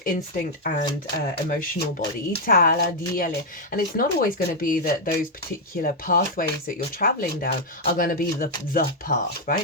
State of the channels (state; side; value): normal; both; correlation -0.01